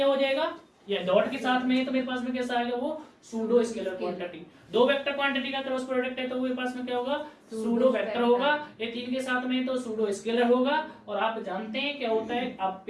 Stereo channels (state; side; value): identical; both; correlation 1.00